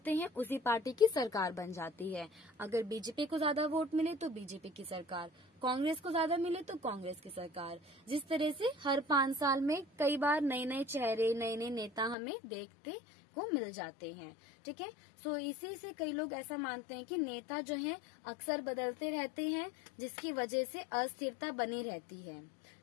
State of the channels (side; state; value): right; drops out; at 12.2 s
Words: हैं उसी पार्टी की सरकार बन जाती है। अगर बीजेपी को ज्यादा वोट मिले तो बीजेपी की सरकार, कांग्रेस को ज्यादा मिले तो कांग्रेस की सरकार। जिस तरह से हर 5 साल में कई बार नए नए चेहरे नए नए नेता हमें देखते को मिल जाते हैं, ठीक है। सो इसी से कई लोग ऐसा मानते हैं कि नेता जो हैं अक्सर बदलते रहते हैं जिसकी वजह से अस्थिरता बनी रहती है,